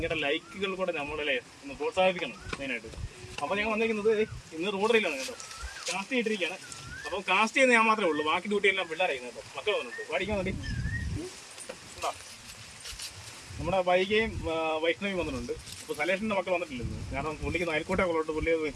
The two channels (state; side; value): identical; both; correlation 1.00